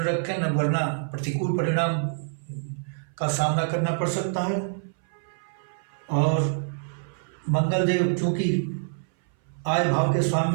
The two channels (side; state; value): left; silent; 59 dB below the other